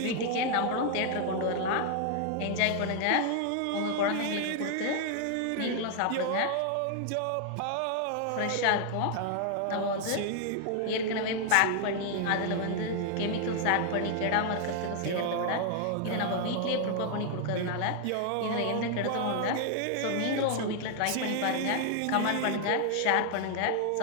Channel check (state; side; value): different; both; correlation 0.00